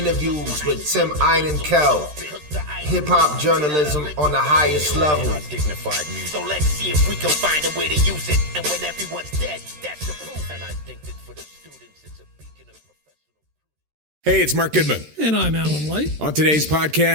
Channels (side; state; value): left; late; 13 ms